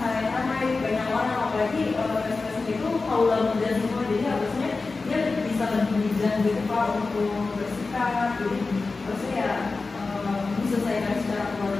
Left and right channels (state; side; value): quieter; right; 3.9 dB